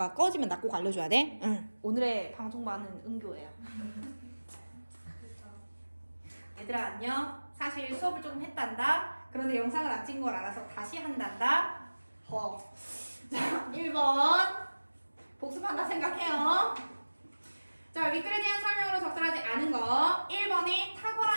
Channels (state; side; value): inverted; both; correlation -1.00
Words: 꺼지면 나 꼭 알려줘야 돼. 응. 오늘의 방송반은 은교예요. 얘들아 안녕. 사실 수업을 조금 했단다. 그런데 영상을 안 찍은 걸 알아서 다시 한단다. 자, 1번 복습한다 생각해요. 자, 윗글에 대한 설명으로 적절하지 않은 거. 1번이